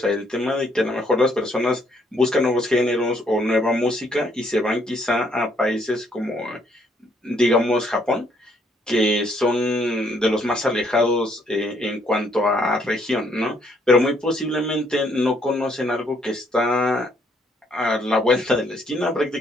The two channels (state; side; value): normal; both; correlation 0.68